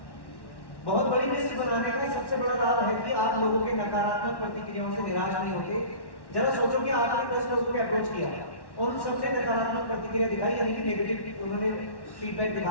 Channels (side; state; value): right; late; 1.1 ms